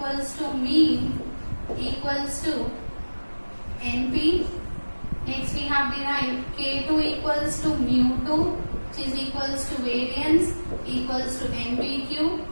to mean equals to NP. Next we have derived K2 equals to mu2, which is equals to variance equals to NPQ,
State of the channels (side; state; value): both; inverted; correlation -1.00